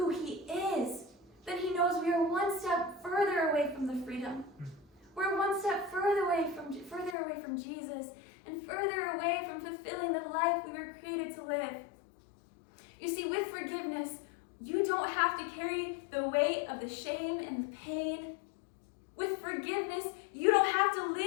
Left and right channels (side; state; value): right; drops out; at 7.2 s